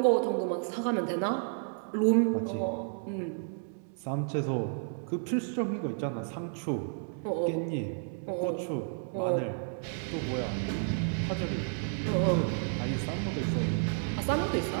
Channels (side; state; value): left; silent; 57 dB below the other